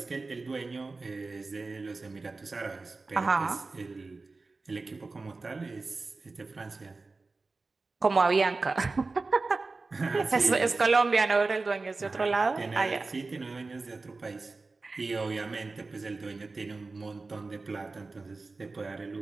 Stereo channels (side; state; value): left; quieter; 3.7 dB